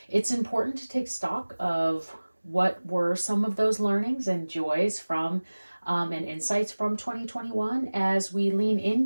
It's important to take stock of what were some of those learnings and joys from and insights from 2021 as we lean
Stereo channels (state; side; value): inverted; both; correlation -1.00